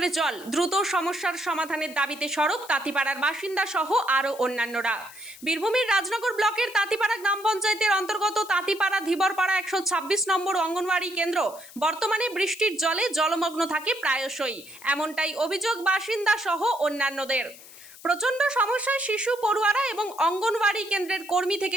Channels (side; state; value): left; noise; hiss, 19 dB below the sound